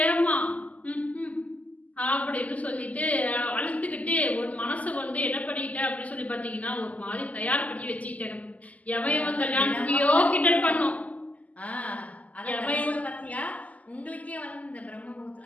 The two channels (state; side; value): late; right; 0.074 ms